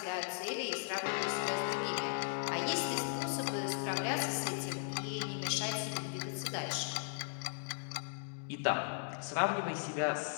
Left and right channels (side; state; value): right; silent; digital silence